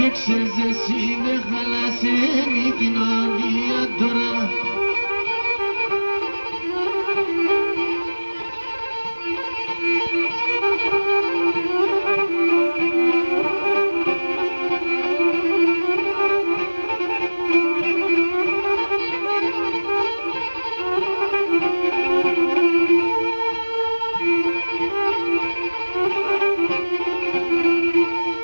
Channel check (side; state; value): both; inverted; correlation -1.00